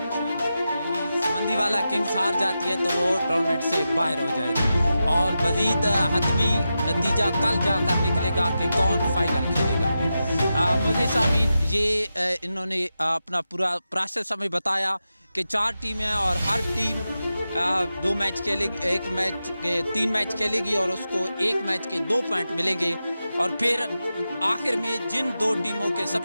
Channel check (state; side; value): inverted; both; correlation -0.91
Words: समंदीवाला किंग्स हार जाती है तो वो टूर्नामेंट से बाहर हो जाएगी और मज़ीद हतमी नतीजा कल जाकर निकलेगा कि कौन फाइनल खेलेगा। मुझे सामीन, ये इन्होंने अपना पूरा प्रोसेस हमें बताया कि 4 टीमें और हर टीम 2 मैच खेलेगी, 1 मैच के 3 मैच खेलेगी और उसको 1 मैच के 2 पॉइंट मिलेंगे और फिर आखिर में जिन 2 टीमों के